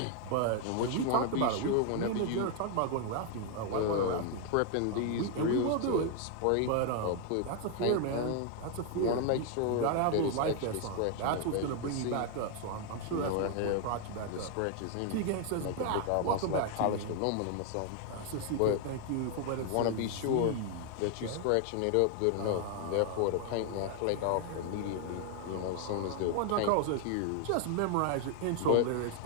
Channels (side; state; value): both; different; correlation 0.00